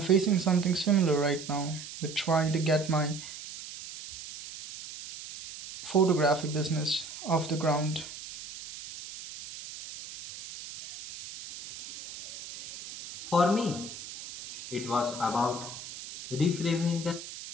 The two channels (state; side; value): noise; right; hiss, 12 dB below the sound